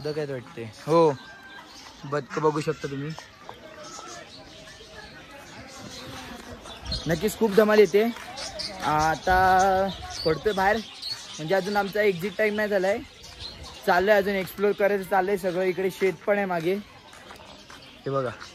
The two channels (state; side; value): identical; both; correlation 1.00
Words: आहेत वाटते. हो, बदक बघू शकता तुम्ही. नक्कीच खूप धमाल येते. आता पडतोय बाहेर, म्हणजे अजून आमचा एक्झिट टाइम नाही झालाय. चाललंय अजून एक्सप्लोर करायचं चाललंय सगळं. इकडे शेत पण आहे मागे, हे बघा.